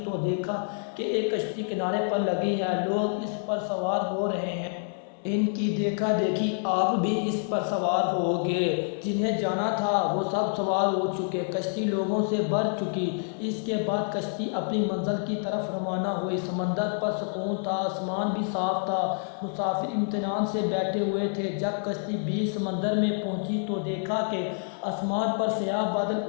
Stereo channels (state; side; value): silent; right; digital silence